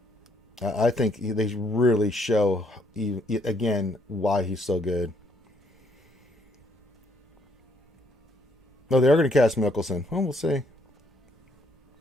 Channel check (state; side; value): normal; both; correlation 0.70